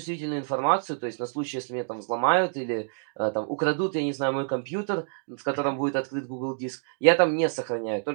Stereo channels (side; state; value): left; silent; digital silence